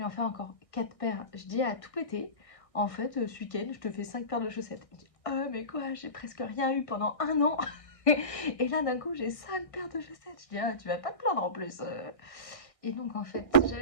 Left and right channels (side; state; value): right; late; 1.6 ms